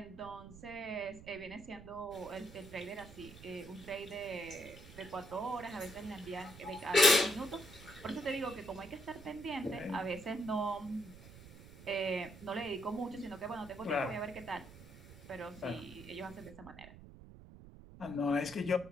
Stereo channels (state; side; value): noise; right; rumble, 16 dB below the sound